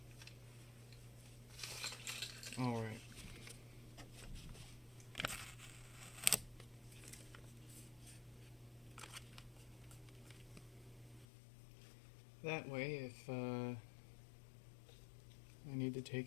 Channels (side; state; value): right; drops out; at 11.2 s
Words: All right. That way, if I need to